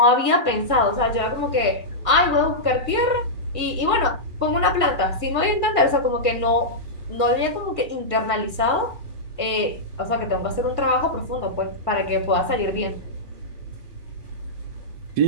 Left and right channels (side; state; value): left; late; 1.7 ms